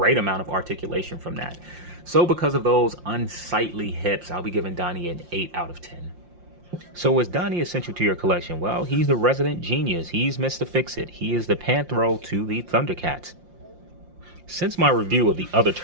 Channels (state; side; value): late; left; 5.7 ms